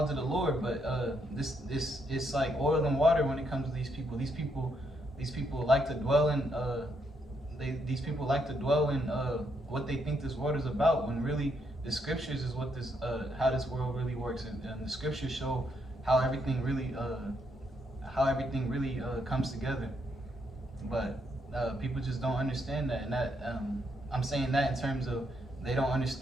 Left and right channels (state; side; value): normal; both; correlation 0.76